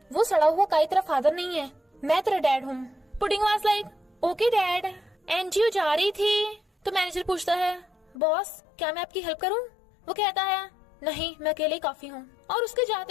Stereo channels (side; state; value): right; drops out; at 8.2 s